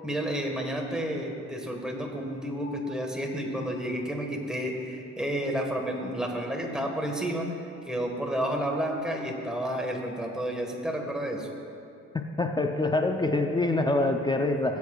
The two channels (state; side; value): normal; both; correlation 0.62